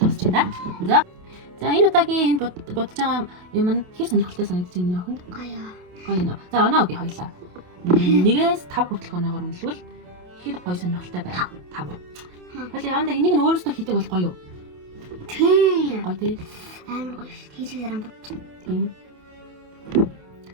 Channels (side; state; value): left; late; 28 ms